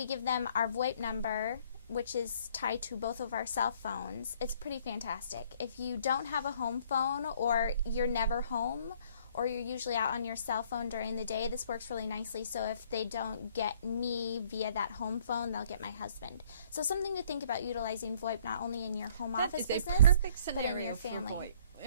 give them our VoIP number, which is tied to both of our cell phones. It's pretty fantastic. If you don't have a home phone or you're never home, or you're usually out on your cell phone during the day, this works really nicely. So if they don't get me via that home phone, they'll get my husband. So something to think about utilizing VoIP not only in your home office business, but in your family. For VoIP.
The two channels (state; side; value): inverted; both; correlation -0.60